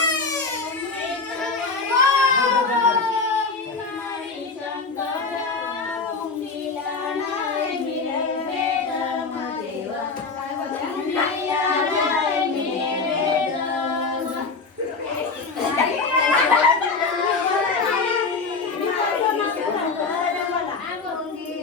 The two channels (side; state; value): right; quieter; 4.3 dB